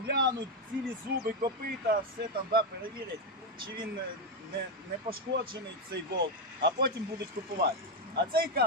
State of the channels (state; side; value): normal; both; correlation 0.05